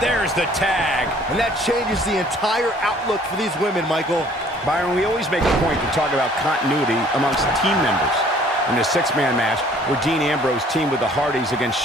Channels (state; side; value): normal; both; correlation 0.56